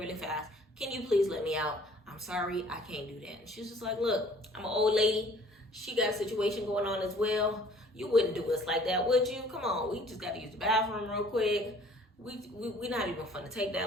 fast. Can you please let me out? I'm sorry, I can't do that. And she's just like, look, I'm an old lady. She got a situation going on as well. You wouldn't do us like that, would you? Come on, we just got to use the bathroom real quick. We not even fun to take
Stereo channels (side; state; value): both; normal; correlation 0.54